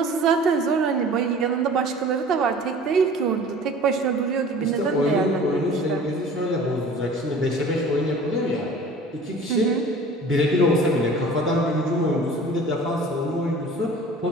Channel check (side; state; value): both; normal; correlation 0.44